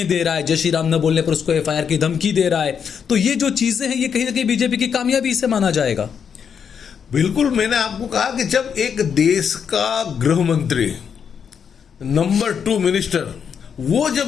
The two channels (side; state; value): right; quieter; 7.2 dB